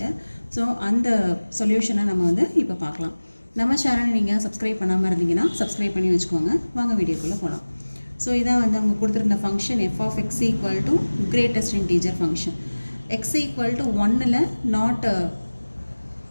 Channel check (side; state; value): both; inverted; correlation -1.00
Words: ஸோ அந்த சொல்யூஷனை நம்ம வந்து இப்போ பார்க்கலாம். நம்ம சேனலை நீங்கள் சப்ஸ்கிரைப் பண்ணாமல் இருந்தீங்கன்னா சப்ஸ்கிரைப் பண்ணி வச்சுக்கோங்க. வாங்க வீடியோக்குள்ளே போகலாம். ஸோ இதான் வந்து அவங்க கொடுத்துருந்த function f of x equal to greatest integer function. X equal to 1ல் நாட்